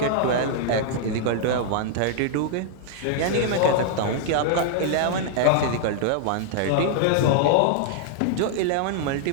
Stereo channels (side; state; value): both; different; correlation -0.01